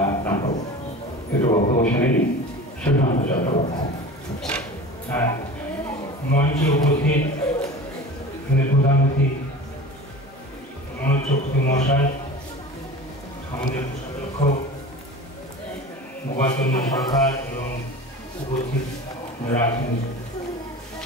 নাটক। একটু বক্তব্য শুনে নিই সুশান্ত চট্টোপাধ্যায়। মঞ্চে উপস্থিত প্রধান অতিথি মনোজ চক্রবর্তী মহাশয়, আমাদের কোষাধ্যক্ষ গোপাল চন্দ্র সরকার এবং উপস্থিত আছেন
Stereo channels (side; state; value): both; normal; correlation 0.36